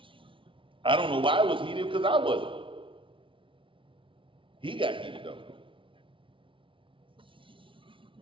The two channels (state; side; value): late; left; 0.25 ms